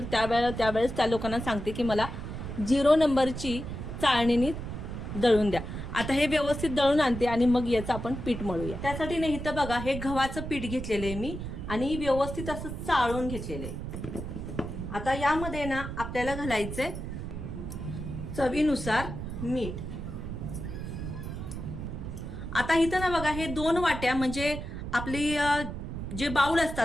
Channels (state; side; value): noise; right; rumble, 7 dB below the sound